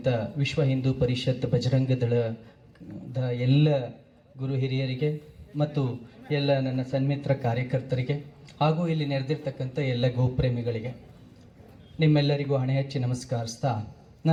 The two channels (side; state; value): both; identical; correlation 1.00